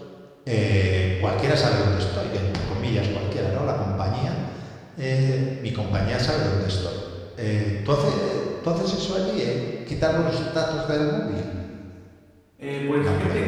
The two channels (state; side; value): identical; both; correlation 1.00